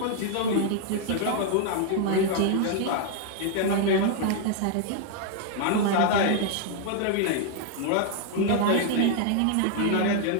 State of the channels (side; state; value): both; different; correlation 0.00